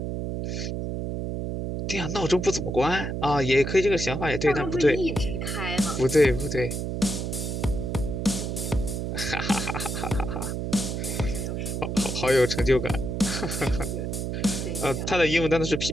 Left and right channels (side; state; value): right; noise; hum, 3 dB below the sound